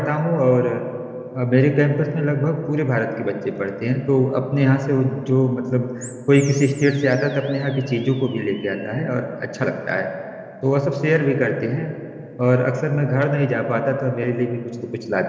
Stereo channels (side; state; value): both; identical; correlation 1.00